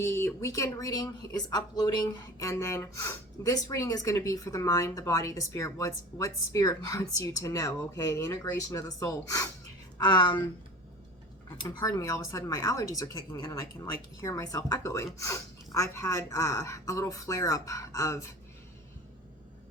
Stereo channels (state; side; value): normal; both; correlation 0.37